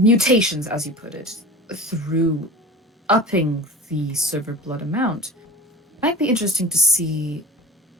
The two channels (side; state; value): both; normal; correlation 0.36